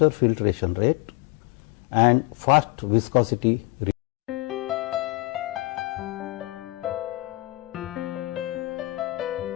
filtration rate and fast viscosity.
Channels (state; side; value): quieter; right; 21.9 dB